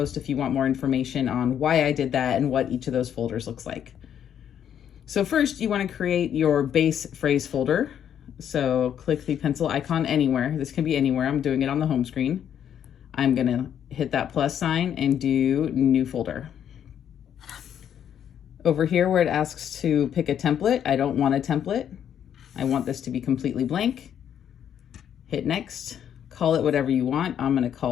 if you want more information on why I did that and what each of those folders looks like. So first, you want to create your base phrase folder. So click the pencil icon anywhere. This can be anywhere. I'm doing it on the home screen. I'm going to hit that plus sign and do new folder. Over here where it asks to pick a template, I don't want a template. I want this to be completely blank. Hit next. Call it whatever you want. I'm going to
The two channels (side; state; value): right; quieter; 9.3 dB